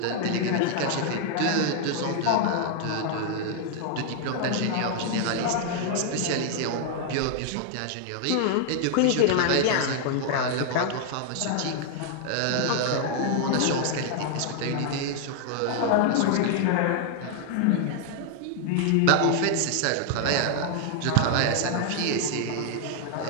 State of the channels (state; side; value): different; both; correlation 0.00